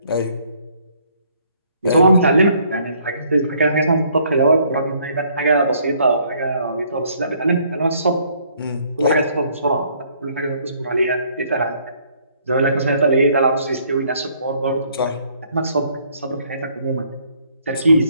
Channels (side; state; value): both; inverted; correlation -0.64